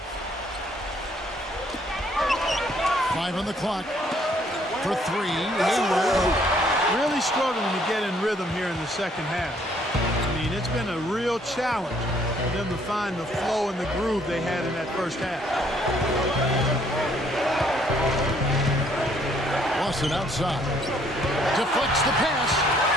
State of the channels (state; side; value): normal; both; correlation 0.65